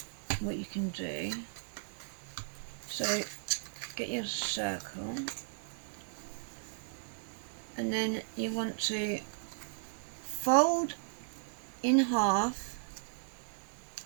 can do. So get your circle, and then you want to fold in half.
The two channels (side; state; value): left; silent; digital silence